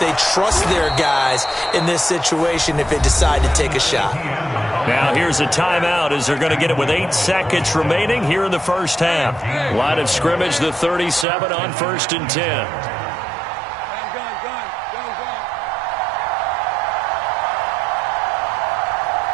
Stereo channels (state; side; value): drops out; left; at 11.2 s